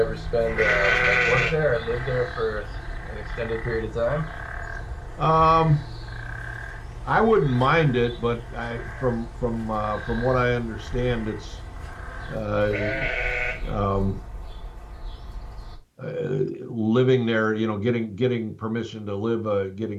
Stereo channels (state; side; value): identical; both; correlation 1.00